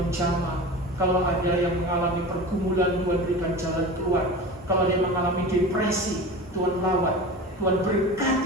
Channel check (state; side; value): normal; both; correlation 0.32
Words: jamah, kalau ada yang mengalami pergumulan Tuhan berikan jalan keluar, kalau ada yang mengalami depresi Tuhan lawat, Tuhan